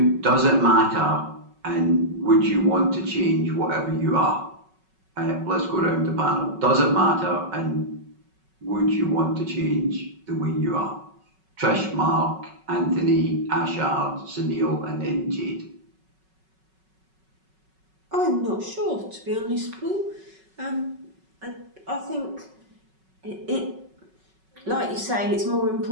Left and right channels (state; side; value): late; left; 5.3 ms